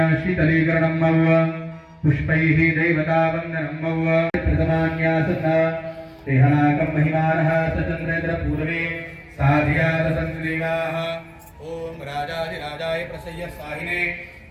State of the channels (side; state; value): both; identical; correlation 1.00